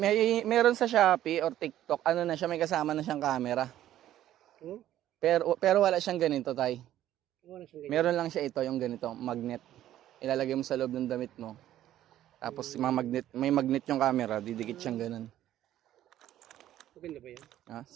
Meron sa Shopee or TikTok, ano na siya, may kasama na siyang camera. Oh? Pero wala siyang ganito, tay. Wala siyang ganyan. Meron lang siya ito, yung ganito, magnet. Ilalagay mo sa loob ng damit mo. Tapos may magnet yung camera, didikit siyang ganun. Maganda ba yan?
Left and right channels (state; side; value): quieter; left; 12.6 dB